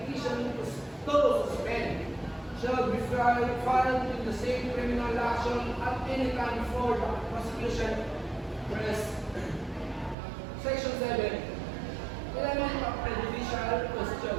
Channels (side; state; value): left; drops out; at 10.2 s